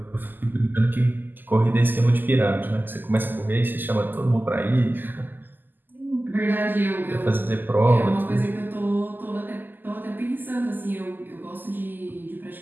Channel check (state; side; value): late; left; 0.090 ms